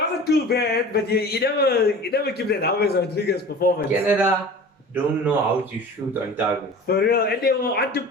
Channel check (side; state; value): both; normal; correlation 0.39